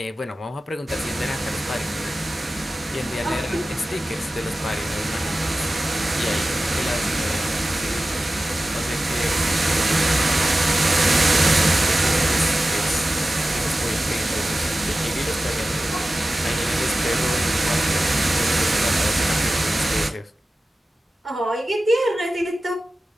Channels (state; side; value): normal; both; correlation 0.95